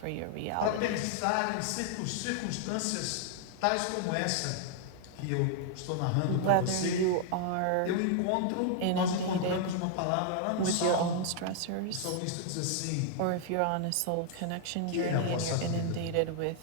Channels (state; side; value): different; both; correlation 0.00